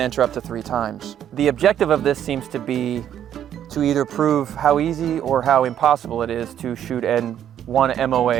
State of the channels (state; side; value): quieter; left; 10.2 dB